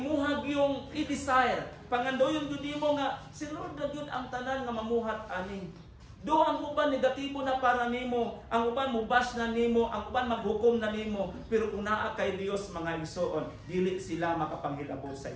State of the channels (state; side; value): identical; both; correlation 1.00